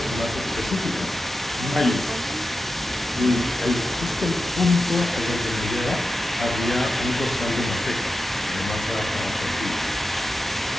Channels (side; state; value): both; normal; correlation 0.91